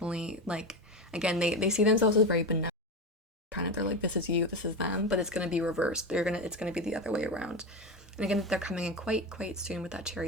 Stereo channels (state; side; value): normal; both; correlation 0.19